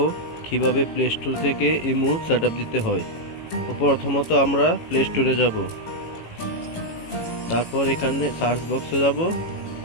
কিভাবে প্লে স্টোর থেকে ইমো সেটআপ দিতে হয়। তো প্রথমত আমরা প্লে স্টোরে যাব, তারপর এখানে সার্চ বক্সে যাব,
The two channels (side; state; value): right; late; 18 ms